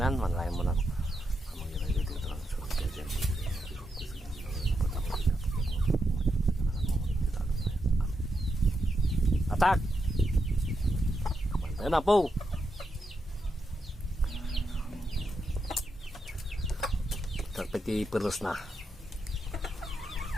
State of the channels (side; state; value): both; normal; correlation 0.84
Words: manlayan mo na. Atak! Ayan na po. Terpeti perus na.